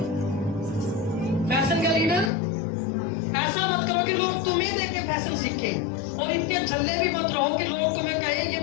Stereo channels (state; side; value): drops out; right; at 2.3 s